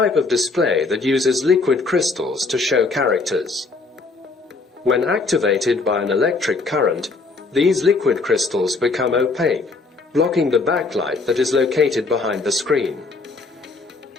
of display that uses liquid crystals to show characters. When activated by an electric current, these liquid crystals become opaque, blocking the backlight that is located behind the screen.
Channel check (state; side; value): quieter; right; 3.9 dB